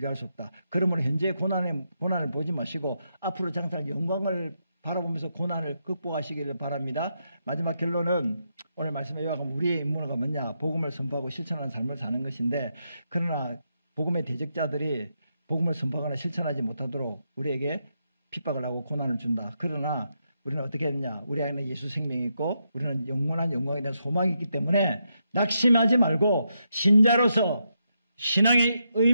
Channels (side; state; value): both; inverted; correlation -0.82